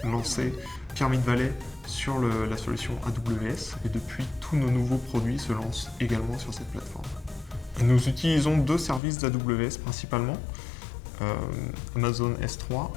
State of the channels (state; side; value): drops out; right; at 9.0 s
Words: lancé Pyramid Valley sur la solution AWS et depuis, tous nos nouveaux produits se lancent également sur cette plateforme. Nous utilisons deux services d'AWS principalement, Amazon S3